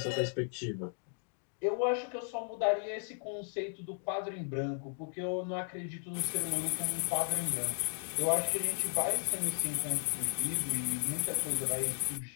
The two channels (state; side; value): silent; right; 54 dB below the other